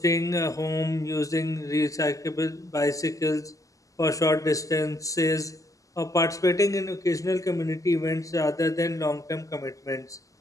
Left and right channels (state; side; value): late; right; 0.16 ms